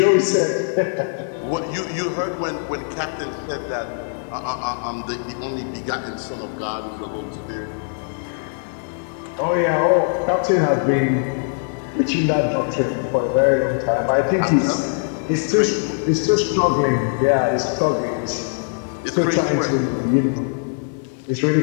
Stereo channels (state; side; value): silent; right; digital silence